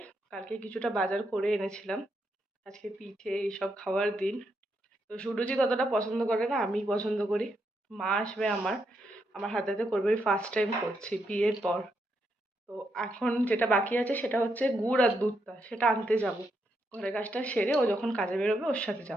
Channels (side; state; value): both; normal; correlation 0.80